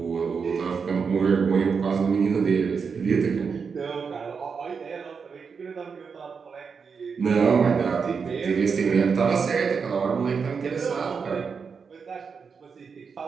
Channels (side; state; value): left; quieter; 5.7 dB